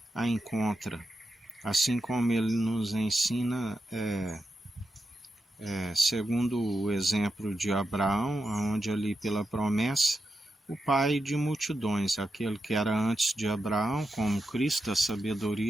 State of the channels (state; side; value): normal; both; correlation 0.87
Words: a encontra, assim como ele nos ensina, segundo o exemplo de Abraão, onde ali pela promessa, o pai de multidões, aquele que era antes de Abraão, como Cristo, a